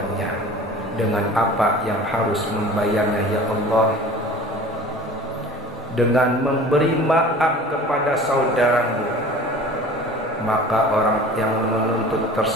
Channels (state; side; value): normal; both; correlation 0.42